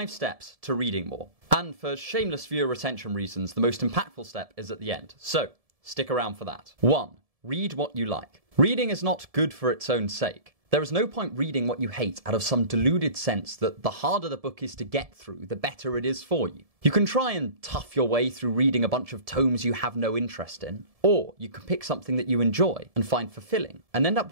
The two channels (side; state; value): left; late; 1.7 ms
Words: steps to reading more. And for shameless viewer retention reasons, the most impactful step is at the end. So, stick around for that. 1. Read what you like. Reading is not good for its own sake. There is no point reading what you hate out of some deluded sense that the harder the book is to get through, the better it is for you. You can try and tough your way through reading a bunch of tomes you have no interest in, or you can pick something that you enjoy and find fulfilling, and end up